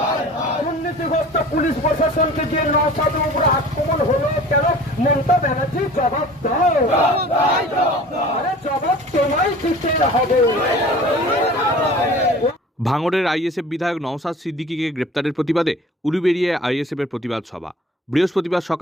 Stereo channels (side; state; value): both; normal; correlation 0.44